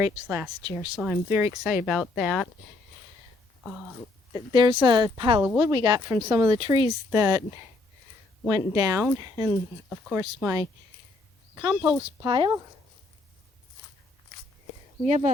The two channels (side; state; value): right; quieter; 3.1 dB